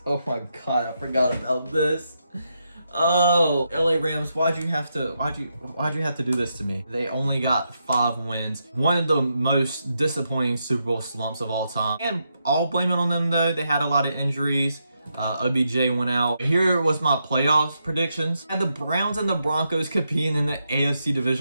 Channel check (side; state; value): both; inverted; correlation -0.82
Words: Oh my God, I forgot about this. Oh, LA Rams, why'd you have to do this to me? They only got 5 wins. One of the most disappointing Super Bowl slumps of all time. And I'll blame it on them though. They had a lot of injuries. OBJ went out. Here was my playoffs predictions. I had the Browns and the Broncos competing in the AFC